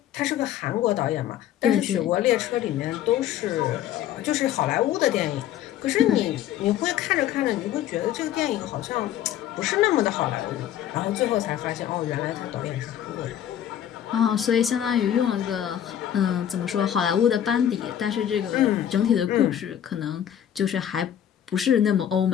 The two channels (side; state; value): right; quieter; 10.7 dB